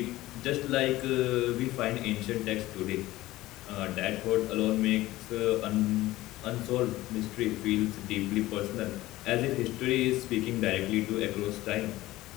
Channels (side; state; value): right; quieter; 17.2 dB